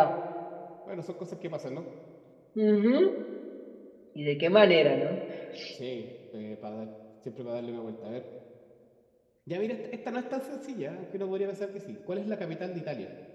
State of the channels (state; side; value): identical; both; correlation 1.00